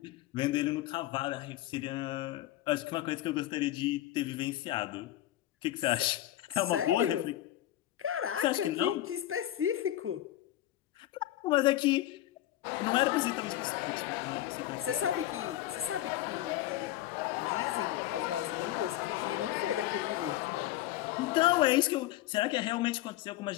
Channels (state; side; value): quieter; right; 14.2 dB